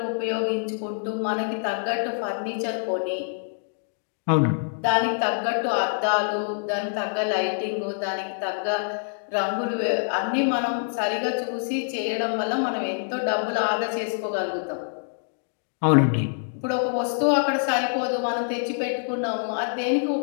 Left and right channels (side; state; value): right; silent; digital silence